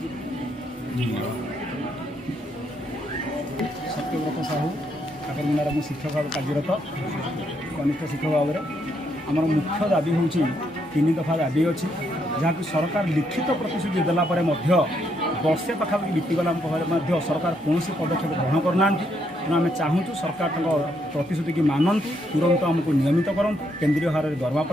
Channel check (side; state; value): both; normal; correlation 0.75